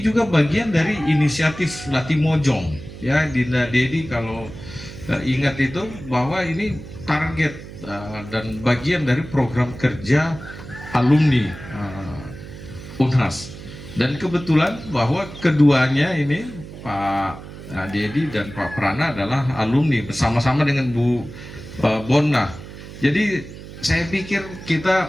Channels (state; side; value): noise; right; hum, 14 dB below the sound